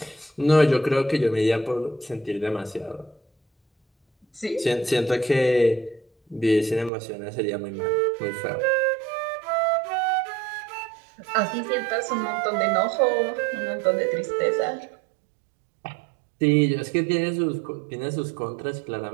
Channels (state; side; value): drops out; left; at 6.9 s